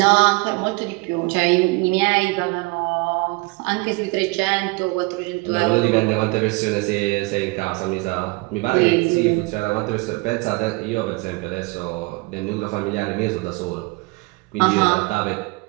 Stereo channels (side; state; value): left; quieter; 26.1 dB